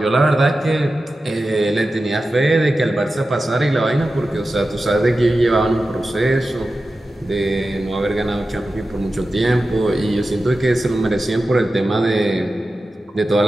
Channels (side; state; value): both; normal; correlation 0.93